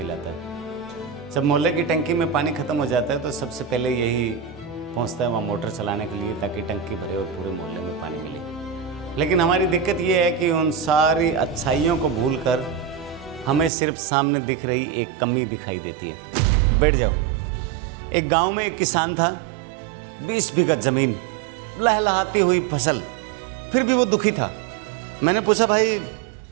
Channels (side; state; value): left; drops out; at 13.7 s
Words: है। जब मोहल्ले की टंकी में पानी खत्म हो जाता है तो सबसे पहले यही पहुंचता है वहाँ मोटर चलाने के लिए, ताकि टंकी भरे और पूरे मोहल्ले में पानी मिले। लेकिन हमारी दिक्कत ये है कि उन सारी अच्छाइयों को भूलकर हमें सिर्फ सामने दिख रही एक कमी दिखाई देती है। बैठ जाओ। एक गाँव में एक किसान था, 20 बीघा जमीन, लहलहाती हुई फसल, फिर भी वो दुखी था। मैंने पूछा, भाई